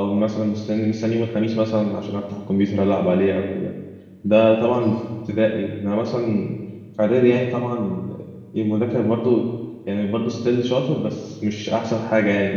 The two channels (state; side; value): identical; both; correlation 1.00